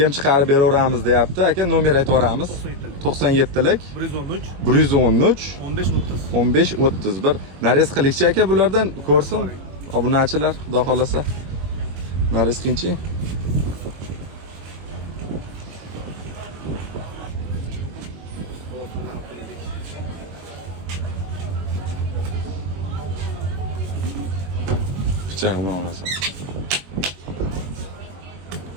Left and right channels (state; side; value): late; left; 21 ms